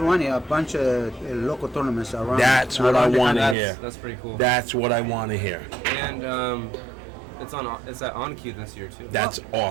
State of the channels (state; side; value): drops out; left; at 3.6 s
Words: a bunch of local tournaments around. That's what I around the want to country. hear. That's pretty cool. That's what I want to hear. And it's at On Cue this year too. That's